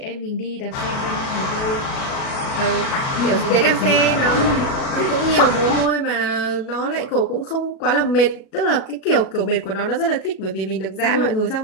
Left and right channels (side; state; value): right; late; 37 ms